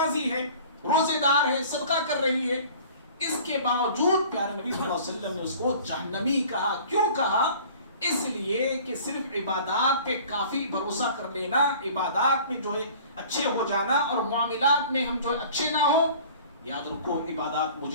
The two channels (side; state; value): both; inverted; correlation -0.46